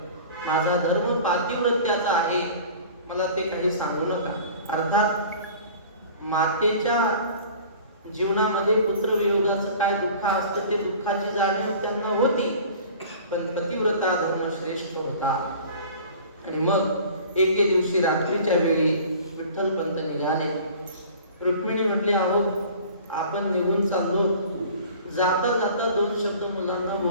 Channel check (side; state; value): both; inverted; correlation -0.44